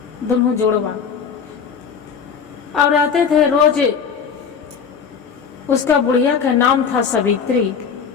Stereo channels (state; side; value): quieter; right; 6.6 dB